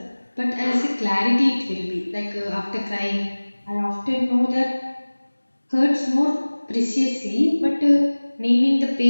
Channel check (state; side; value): inverted; both; correlation -1.00